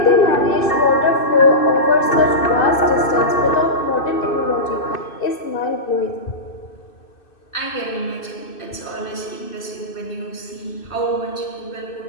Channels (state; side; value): late; right; 2.6 ms